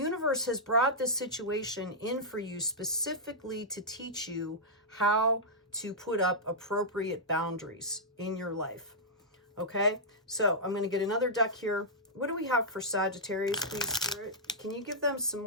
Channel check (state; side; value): normal; both; correlation -0.10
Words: has brought this situation in for you specifically to teach you how to put up appropriate boundaries in your life. Okay, so I'm going to get another deck here. What do we have for Sagittarius, please, Spirit? Can you give them some